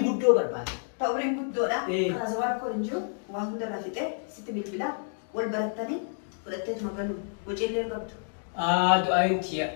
guddoo barbaada. Ta umriin guddoodha. Kana zawaan koo hin jiru waan hundarraa fixee sitti bilbilaa wal barattanii fudhatteetuma galuu waciillee qabdu. Du'aayin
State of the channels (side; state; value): right; silent; digital silence